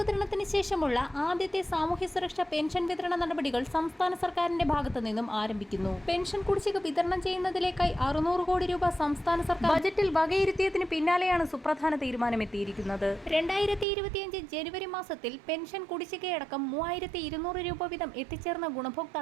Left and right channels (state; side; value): drops out; left; at 13.9 s